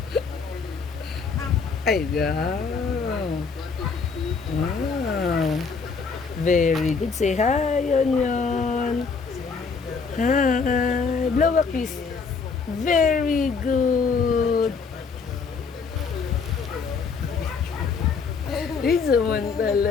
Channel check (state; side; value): quieter; right; 5.1 dB